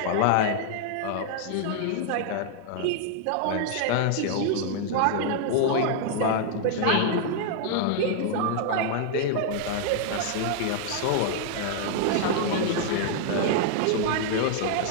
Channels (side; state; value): both; different; correlation -0.01